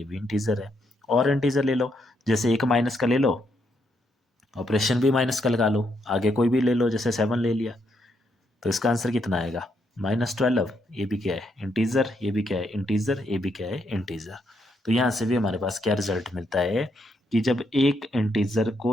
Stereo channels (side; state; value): both; normal; correlation 0.77